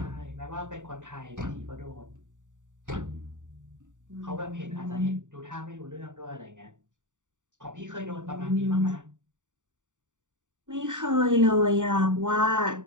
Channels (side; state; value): left; late; 0.86 ms